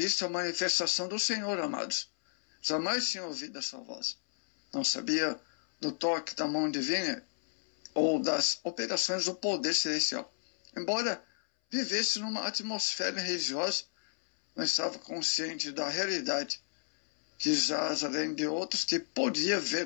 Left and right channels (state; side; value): silent; right; 56 dB below the other